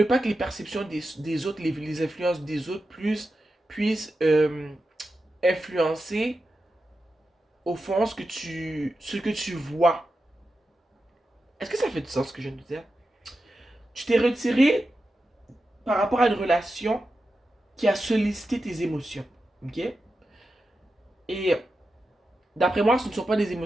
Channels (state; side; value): normal; both; correlation 0.90